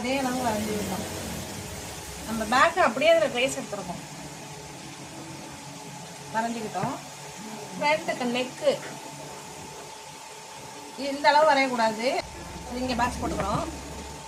அளவு வரைஞ்சிக்கிட்டோம். நம்ம பேக்கு அப்படியே அதில் ட்ரேஸ் எடுத்துருக்கோம், வரைஞ்சிக்கிட்டோம். ஃப்ரண்ட்டுக்கு நெக்கு இந்த அளவு வரையக்கூடாது, இங்கே பாக்ஸ் போட்டுக்கிறோம்.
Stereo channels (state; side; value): identical; both; correlation 1.00